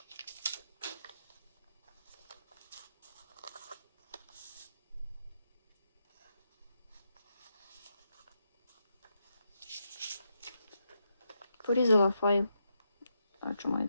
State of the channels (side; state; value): both; inverted; correlation -0.82